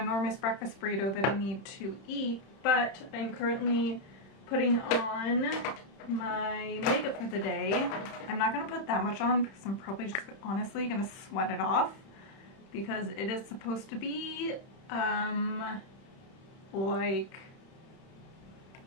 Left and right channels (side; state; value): right; late; 31 ms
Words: breakfast burrito that I need to eat, but I'm currently putting on my makeup for the day. I'm not going to put that much on because I'm probably just honestly going to sweat it off because it is supposed to be like